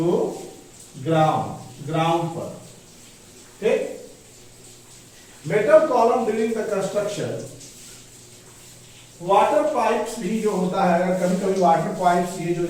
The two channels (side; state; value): both; identical; correlation 1.00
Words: ग्राउंड पर। ठीक, metal column during the construction, water pipes भी जो होता है, अगर कभी कभी वाटर पाइप्स ये जो